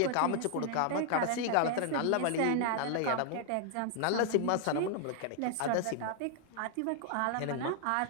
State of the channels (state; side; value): different; both; correlation 0.00